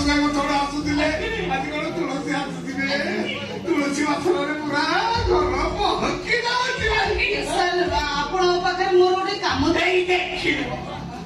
ଭାଇ ଥରେ ଆସୁଥିଲେ ଆଜି କଣ ତୁଳସୀ ଆସୁଥିବେ ତୁଳସୀ ବାସନରେ ପୁରା ଘର ପହଞ୍ଚି ଯାଉଛି। ସାର୍ ଆପଣଙ୍କ ପାଖରେ ମୋର ଗୋଟେ କାମ ଏଇ ଦେଖିଲ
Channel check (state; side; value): identical; both; correlation 1.00